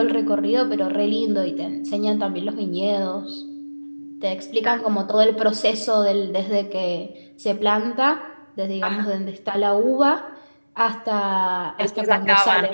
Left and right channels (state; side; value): inverted; both; correlation -1.00